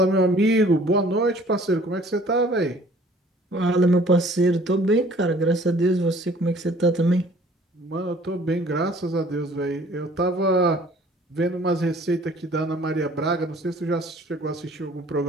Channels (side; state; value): both; normal; correlation 0.54